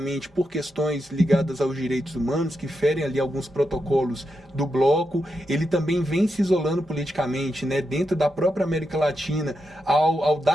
por questões ligadas aos direitos humanos, que ferem ali alguns protocolos do bloco. Ele também vem se isolando politicamente, né? Dentro da própria América Latina, ao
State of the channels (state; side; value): normal; both; correlation 0.86